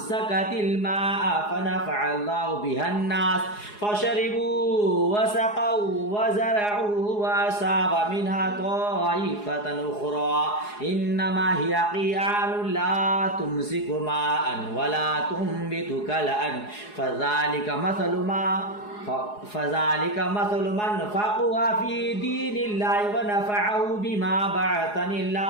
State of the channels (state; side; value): late; right; 4.8 ms